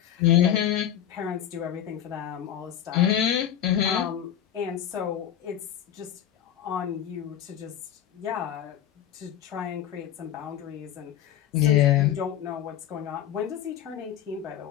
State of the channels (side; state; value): right; quieter; 10.5 dB